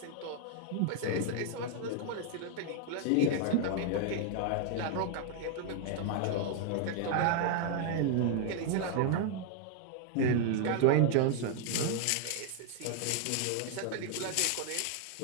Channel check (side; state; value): both; different; correlation 0.00